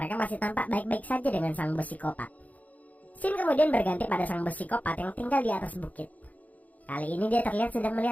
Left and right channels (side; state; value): right; late; 0.075 ms